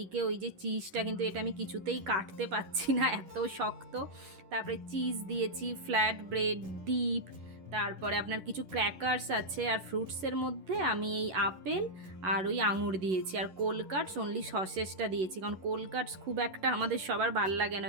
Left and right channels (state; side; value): late; left; 11 ms